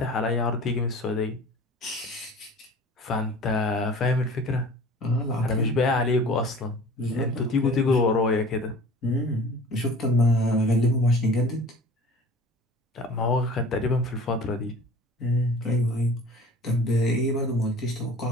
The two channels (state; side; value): normal; both; correlation 0.44